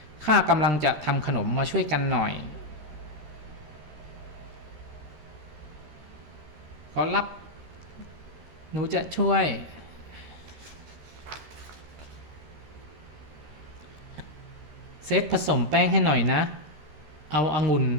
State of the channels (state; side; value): late; left; 13 ms